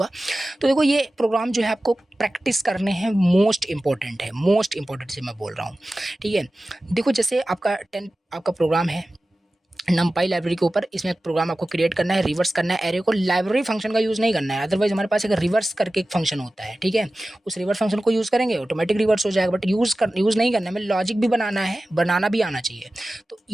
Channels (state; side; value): normal; both; correlation 0.96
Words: तो देखो ये प्रोग्राम जो है आपको प्रैक्टिस करने हैं, मोस्ट इंपॉर्टेंट है, मोस्ट इंपॉर्टेंट से मैं बोल रहा हूँ, ठीक है। देखो जैसे आपका आपका प्रोग्राम है numpy लाइब्रेरी के ऊपर, इसमें एक प्रोग्राम आपको क्रिएट करना है, रिवर्स करना है एरे को। लाइब्रेरी फंक्शन का यूज़ नहीं करना है, अदरवाइज हमारे पास एक रिवर्स करके एक फंक्शन होता है, ठीक है। उस रिवर्स फंक्शन को यूज़ करेंगे ऑटोमेटिक रिवर्स हो जाएगा, बट यूज़ नहीं करना है, हमें लॉजिक भी बनाना है, बनाना भी आना चाहिए। तो